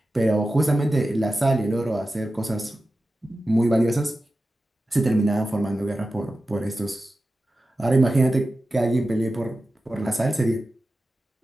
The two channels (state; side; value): normal; both; correlation 0.93